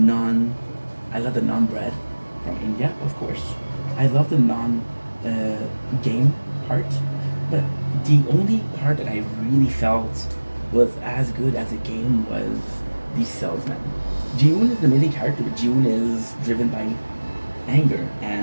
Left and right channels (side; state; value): both; inverted; correlation -1.00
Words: bread from India, of course. I love the game part, but the only part that I really felt was as good as a game was the salesman. Ji-hoon is an amazing character, but Ji-hoon is driven by anger